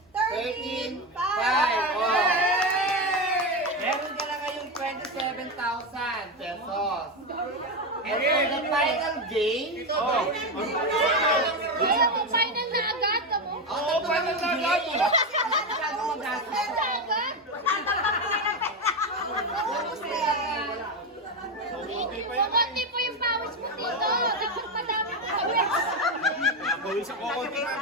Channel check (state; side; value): normal; both; correlation 0.12